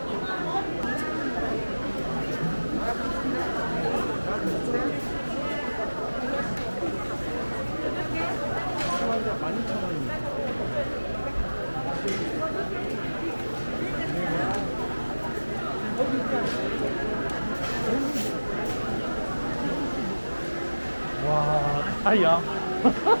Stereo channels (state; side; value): inverted; both; correlation -1.00